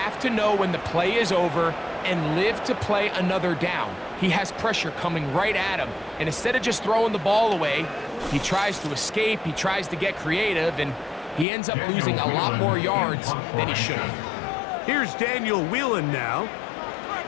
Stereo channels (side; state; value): right; drops out; at 11.5 s